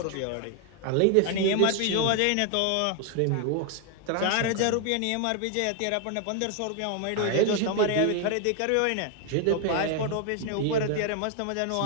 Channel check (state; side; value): different; both; correlation 0.00